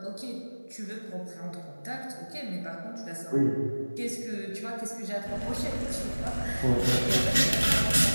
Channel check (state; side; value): inverted; both; correlation -1.00